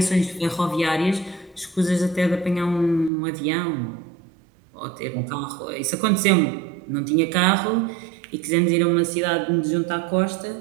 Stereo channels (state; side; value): drops out; left; at 3.1 s